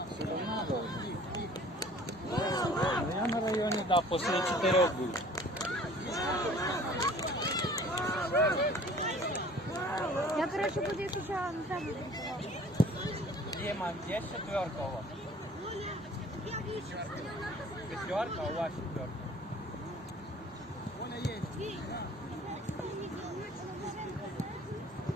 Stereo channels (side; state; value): both; normal; correlation 0.50